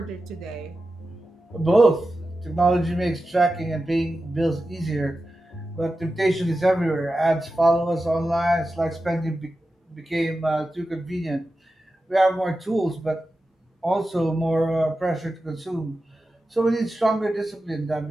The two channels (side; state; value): both; normal; correlation 0.92